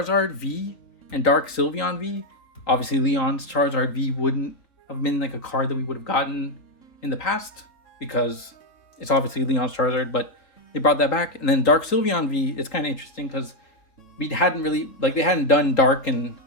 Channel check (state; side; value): late; right; 3.8 ms